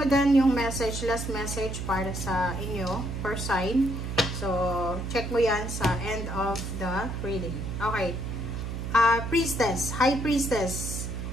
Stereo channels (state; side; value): noise; right; hum, 5 dB below the sound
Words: mo din yung message, last message para sa inyo, fire sign. So, check mo yan sa end of the reading. Okay. Priestess. High Priestess.